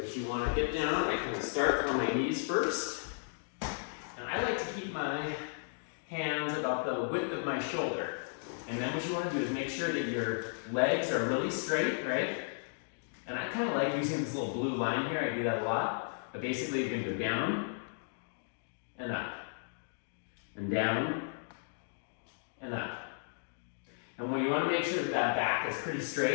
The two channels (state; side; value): silent; right; digital silence